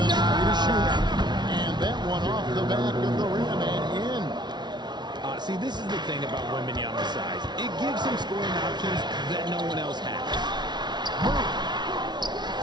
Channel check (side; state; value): left; late; 0.20 ms